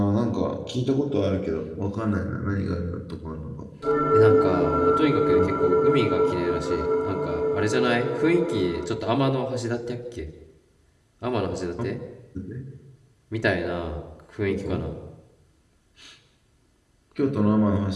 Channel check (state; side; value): identical; both; correlation 1.00